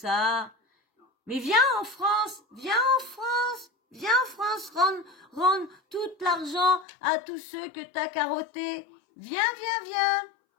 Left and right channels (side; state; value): right; drops out; at 6.9 s